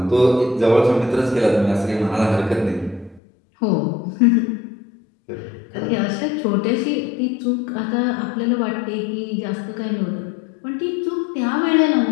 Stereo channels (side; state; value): right; drops out; at 3.2 s